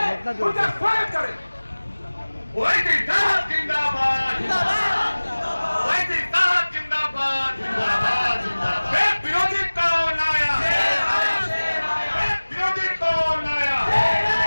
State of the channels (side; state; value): both; inverted; correlation -1.00